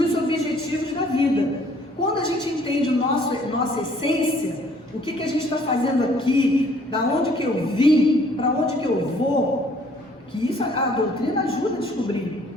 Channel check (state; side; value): normal; both; correlation 0.59